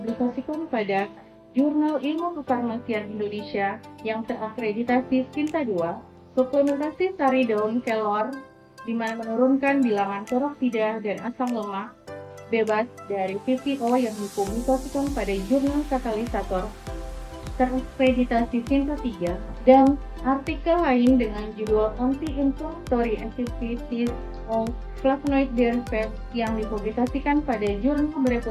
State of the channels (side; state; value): both; identical; correlation 1.00